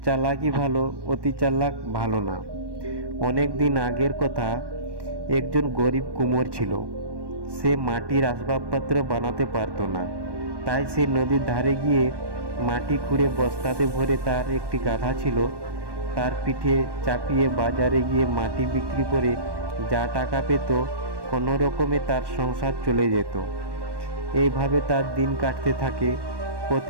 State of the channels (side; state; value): left; late; 1.1 ms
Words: চালাকি ভালো, অতি চালাক ভালো না। অনেক দিন আগের কথা, একজন গরিব কুমোর ছিল। সে মাটির আসবাবপত্র বানাতে পারতো না, তাই সে নদীর ধারে গিয়ে মাটি খুঁড়ে বস্তাতে ভরে, তার একটি গাধা ছিল, তার পিঠে চাপিয়ে বাজারে গিয়ে মাটি বিক্রি করে যা টাকা পেত, কোনো রকমে তার সংসার চলে যেত। এইভাবে তার দিন কাটতে থাকে।